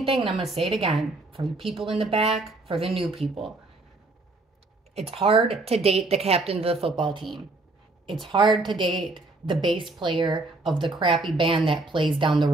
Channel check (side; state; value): left; quieter; 3.1 dB